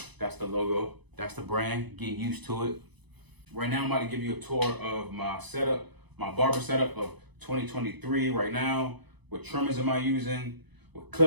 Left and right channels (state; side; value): late; left; 0.99 ms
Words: that's the logo, that's the brand. Get used to it. Right now I'm about to give you a tour of my setup, my barber setup of 2023 right now. What trimmers am I using? What